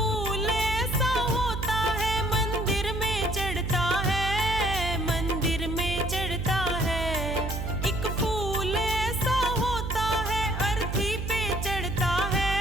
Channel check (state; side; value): noise; right; hum, 4 dB below the sound